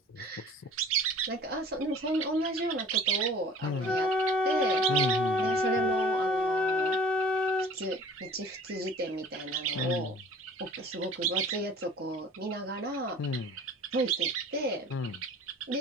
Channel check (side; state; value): both; normal; correlation 0.46